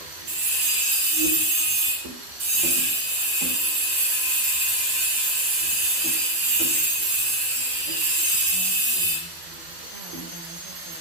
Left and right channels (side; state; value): left; late; 12 ms